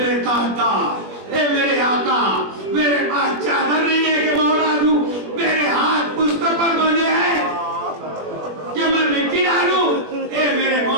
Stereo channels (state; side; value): late; left; 20 ms